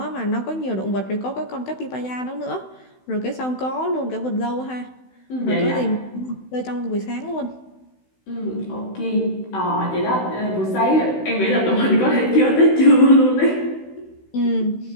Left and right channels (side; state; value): right; late; 16 ms